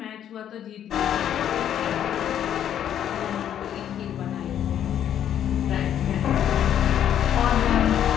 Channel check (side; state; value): right; quieter; 10.1 dB